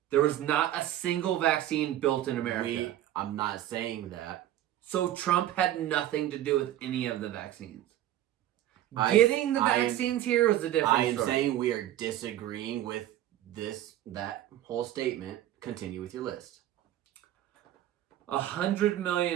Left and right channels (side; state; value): left; quieter; 12.9 dB